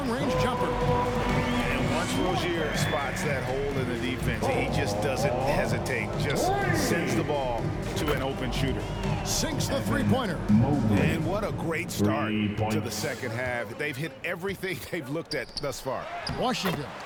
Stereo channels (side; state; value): both; identical; correlation 1.00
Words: jumper. And Once Rozier spots that hole in the defense, he just doesn't hesitate. Just sends the ball to an open shooter. Sinks the three-pointer. And what a great start to the second half. They've hit everything they've looked at thus far. Washington.